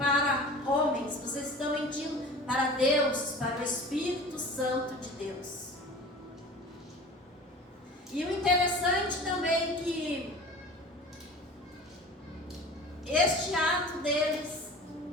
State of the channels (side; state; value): both; normal; correlation 0.40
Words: homens, vocês estão mentindo para Deus, para o Espírito Santo de Deus. E o interessante também é que este ato deles